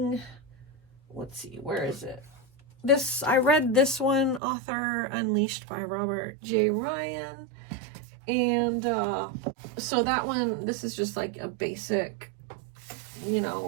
let's see, where is it? I read this one, Author Unleashed by Robert J. Ryan, And so that one, this is just like a basic, you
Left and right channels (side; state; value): left; drops out; at 4.4 s